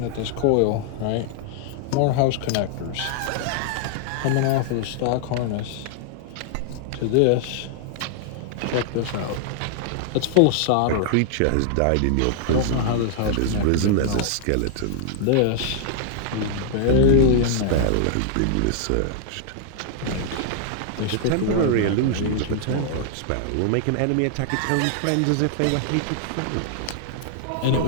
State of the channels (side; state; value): both; different; correlation -0.01